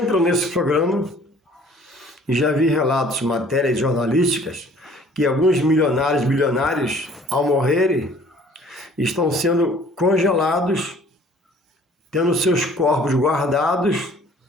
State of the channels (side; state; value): both; normal; correlation 0.53